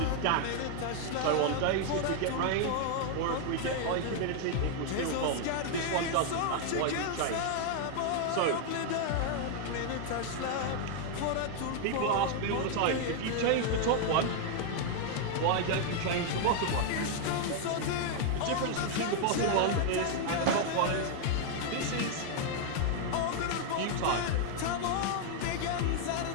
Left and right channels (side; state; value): both; different; correlation 0.00